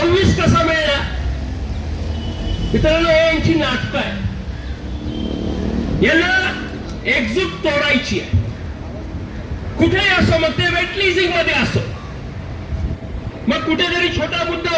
कसा मिळणार? मित्रांनो, हे यांची नाटकं आहे. यांना एकजूट तोडायची आहे. कुठेही असो, मग ते वेट लीजिंग मध्ये असो, मग कुठेतरी छोटा मुद्दा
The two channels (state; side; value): identical; both; correlation 1.00